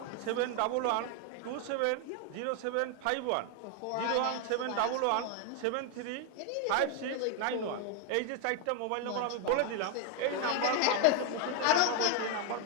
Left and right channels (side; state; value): both; different; correlation 0.01